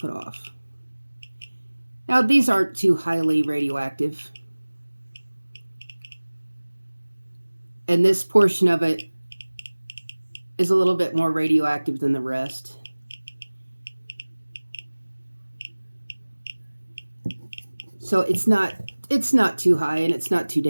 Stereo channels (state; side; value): inverted; both; correlation -1.00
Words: off. Now, these aren't too highly radioactive. And this portion of it is a little bit more radioactive than the rest. So it's not too high and it's not too